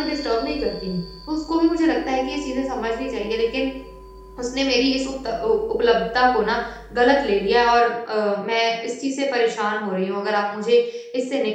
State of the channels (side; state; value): both; identical; correlation 1.00